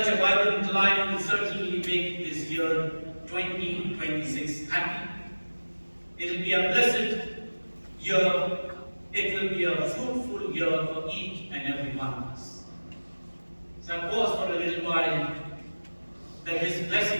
a vibrant life will certainly make this year 2026 happy. It will be a blessed year. It will be a fruitful year for each and every one of us. So I pause for a little while that His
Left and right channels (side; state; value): both; inverted; correlation -1.00